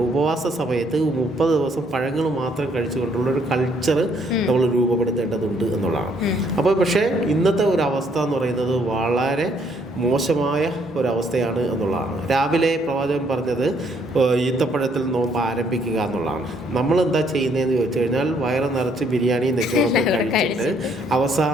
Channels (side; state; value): both; normal; correlation 0.68